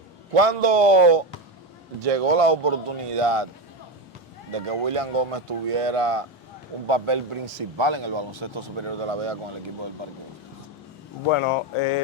¿Cuándo llegó la oportunidad de que William Gómez tuviera un papel principal en el baloncesto superior de La Vega con el equipo del Parque Hostos? Bueno,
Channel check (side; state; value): both; normal; correlation 0.15